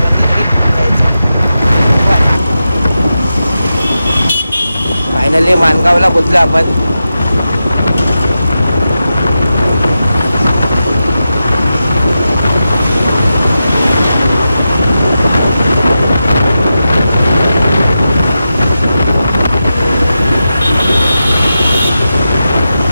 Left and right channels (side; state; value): both; inverted; correlation -0.90